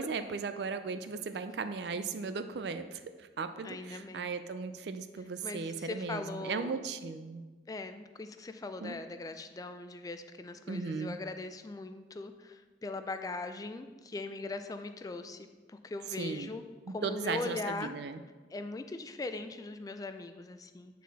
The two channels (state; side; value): normal; both; correlation 0.31